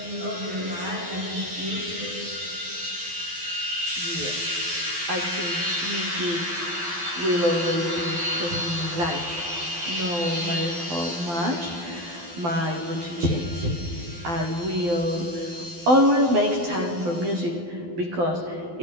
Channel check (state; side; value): late; left; 12 ms